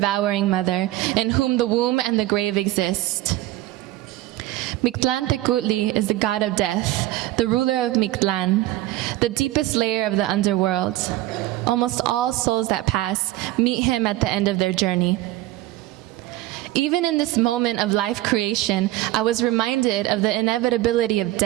mother, in whom the womb and the grave exist. Mictlán Tecutli is the god of death, the ruler of Mictlán, the deepest layer of the underworld. Almost all souls that pass meet him at the end of their journey. Even in this moment of life creation, I was reminded of the inevitability of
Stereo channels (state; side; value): quieter; left; 16.7 dB